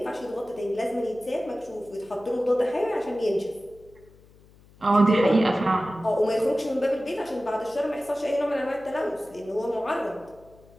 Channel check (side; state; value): left; noise; hum, 26 dB below the sound